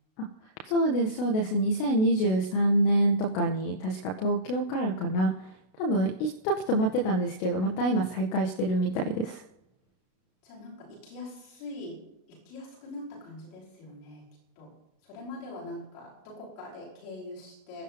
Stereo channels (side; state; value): right; late; 32 ms